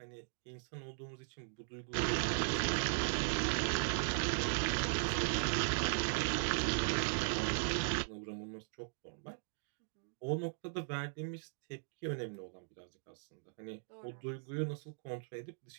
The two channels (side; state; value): left; silent; digital silence